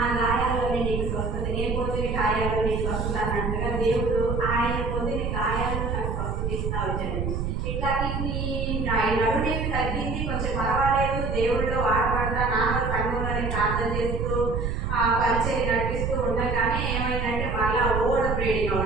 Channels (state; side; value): noise; right; rumble, 2 dB below the sound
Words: గాయాల్లోనే నీకు స్వస్థత, నేను పొందిన గాయాల్లో నీకు స్వస్థత అన్నట్టుగా దేవుడు ఆయన పొందిన గాయాలను నాకు స్వస్థత ఇస్తా వచ్చాడు. ఇట్లా నడునేమి తగ్గింది, కొంచెం పర్వాలేదు, దేవుడిలో వాడబడతా నాన్న సంఘంలోనే ప్రార్థన చేస్తూ పరిచయం నడిపిస్తూ ఉండగానే ఏమైందంటే మళ్ళా ఓడ బ్రీడింగ్